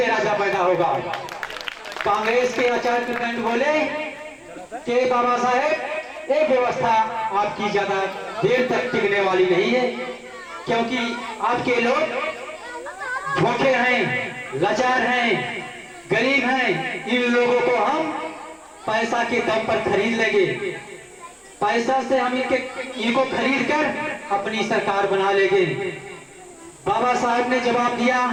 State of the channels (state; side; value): identical; both; correlation 1.00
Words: राजा पैदा होगा। कांग्रेस के आचार्य कृपलाल बोले कि बाबा साहेब ये व्यवस्था आपकी ज्यादा देर तक टिकने वाली नहीं है, क्योंकि आपके लोग भूखे हैं, लाचार हैं, गरीब हैं। इन लोगों को हम पैसा के दम पर खरीद लेंगे, पैसा से हम इनको खरीद कर अपनी सरकार बना लेंगे। बाबा साहब ने जवाब दिया